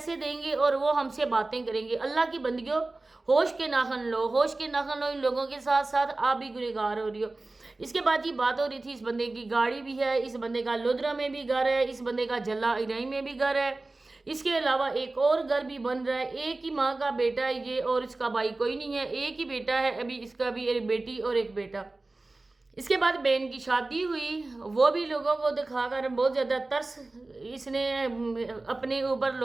دیں گے اور وہ ہم سے باتیں کریں گے۔ اللہ کی بندگیوں، ہوش کے ناخن لو، ہوش کے ناخن لو، ان لوگوں کے ساتھ ساتھ آپ بھی گنہگار ہو رہی ہو۔ اس کے بعد یہ بات ہو رہی تھی اس بندے کی گاڑی بھی ہے، اس بندے کا لودرا میں بھی گھر ہے، اس بندے کا جلا ارائی میں بھی گھر ہے، اس کے علاوہ ایک اور گھر بھی بن رہا ہے، ایک ہی ماں کا بیٹا ہے یہ، اور اس کا بھائی کوئی نہیں ہے، ایک ہی بیٹا ہے ابھی اس کا بھی، ایک بیٹی اور ایک بیٹا۔ اس کے بعد بہن کی شادی ہوئی، وہ بھی لوگوں کو دکھا کر بہت زیادہ ترس اس نے اپنے اوپر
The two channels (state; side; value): quieter; left; 3.1 dB